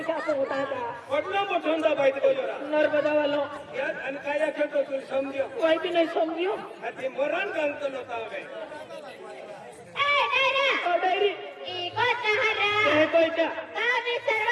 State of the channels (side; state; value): both; identical; correlation 1.00